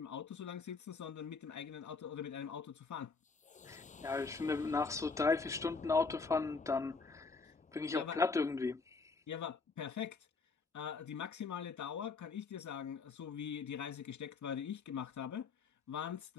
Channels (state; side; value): quieter; right; 4.5 dB